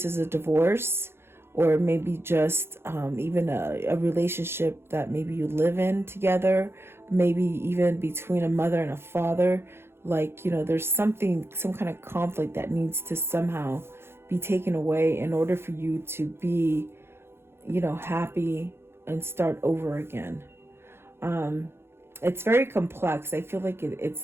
is a divorce or maybe just even a relationship that maybe you live in together, maybe even between a mother and a father. Like, you know, there's some kind of conflict that needs to somehow be taken away in order for you to be, you know, happy and start over again. It's very complex. I feel like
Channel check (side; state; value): left; late; 0.12 ms